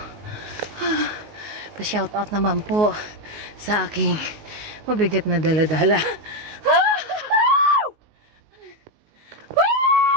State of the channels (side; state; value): left; late; 19 ms